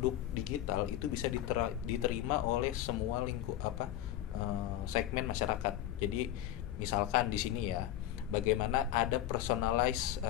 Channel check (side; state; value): right; quieter; 12.6 dB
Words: digital itu bisa diterima oleh semua segmen masyarakat. Jadi misalkan di sini ya, bagaimana ada personalized